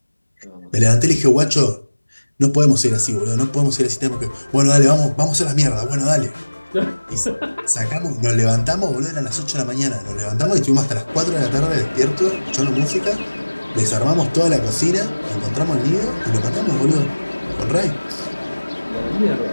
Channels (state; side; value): inverted; both; correlation -1.00